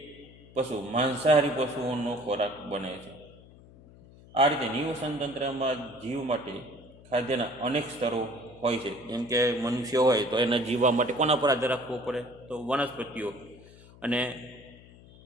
પશુ માંસાહારી પશુઓનો ખોરાક બને છે. આ રીતે નિવસન તંત્રમાં જીવ માટે ખાદ્યના અનેક સ્તરો હોય છે. જેમ કે મનુષ્ય હોય તો એના જીવવા માટે કોના પર આધાર રાખવો પડે? તો વનસ્પતિઓ. અને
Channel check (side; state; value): left; noise; hum, 22 dB below the sound